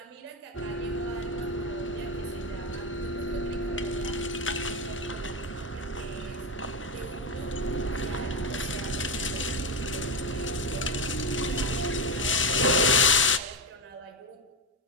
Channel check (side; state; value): both; normal; correlation 0.11